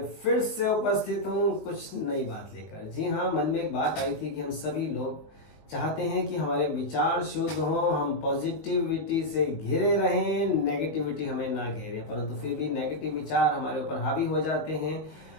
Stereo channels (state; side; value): late; right; 19 ms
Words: फिर से उपस्थित हूँ कुछ नई बात लेकर। जी हाँ, मन में एक बात आई थी कि हम सभी लोग चाहते हैं कि हमारे विचार शुद्ध हों, हम पॉजिटिविटी से घिरे रहें, नेगेटिविटी हमें ना घेरे, परंतु फिर भी नेगेटिव विचार हमारे ऊपर हावी हो जाते हैं।